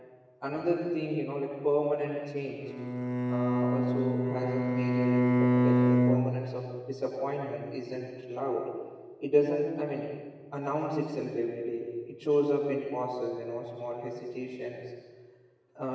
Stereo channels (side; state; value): both; identical; correlation 1.00